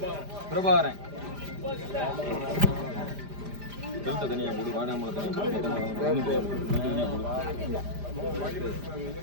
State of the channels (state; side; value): late; left; 5.0 ms